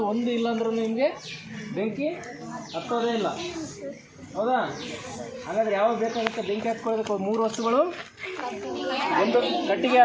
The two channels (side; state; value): both; identical; correlation 1.00